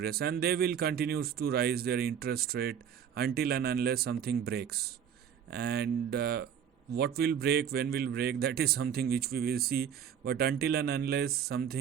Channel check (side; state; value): left; quieter; 8.4 dB